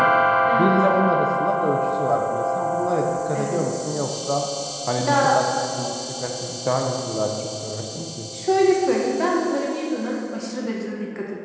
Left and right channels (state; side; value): identical; both; correlation 1.00